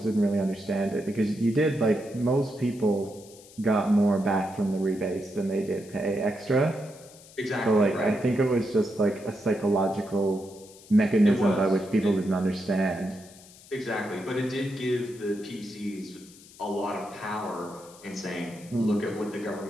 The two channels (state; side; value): noise; left; hiss, 22 dB below the sound